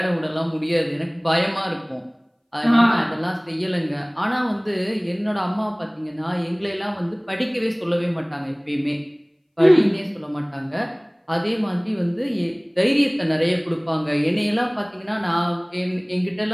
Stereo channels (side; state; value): both; identical; correlation 1.00